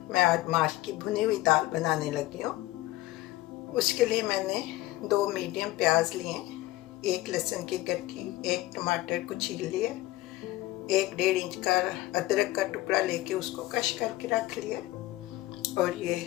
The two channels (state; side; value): quieter; right; 17.6 dB